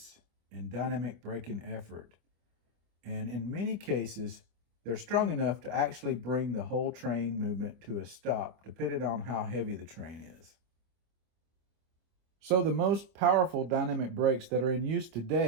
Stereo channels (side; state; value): left; late; 25 ms